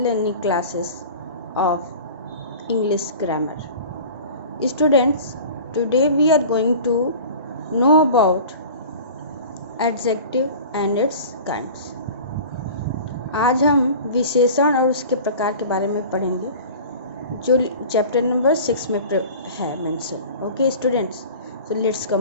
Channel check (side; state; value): both; inverted; correlation -0.39